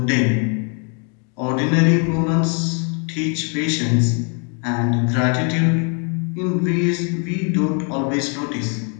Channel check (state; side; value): quieter; right; 38.5 dB